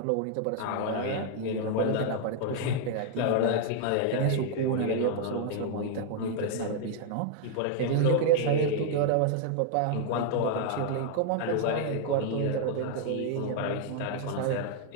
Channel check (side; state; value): both; different; correlation 0.00